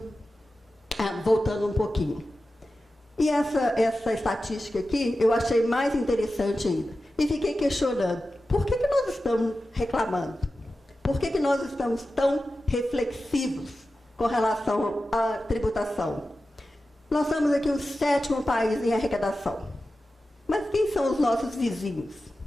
voltando um pouquinho. E essa estatística aqui, eu achei mais interessante ainda. E fiquei questionando, por que nós estamos reclamando? Por que nós estamos tão reflexivos com relação à tributação? Nós somos aqui o 7º país em arrecadação. Mas quem são os nossos vizinhos?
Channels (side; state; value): both; normal; correlation 0.93